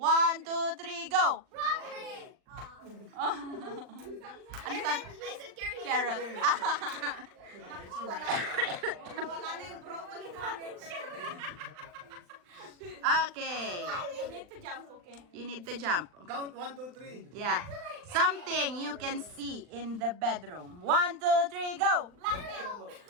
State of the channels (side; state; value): left; late; 39 ms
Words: 2, 3, go! Broccoli! Ano sabi? I said carrot. Carrot. Wala na yung broccoli natin. Okay. You need to jump, okay? You need to jump. Count 1, 2, 3. Yeah. Something you can see in the bedroom. 1, 2, 3, go! Blanket.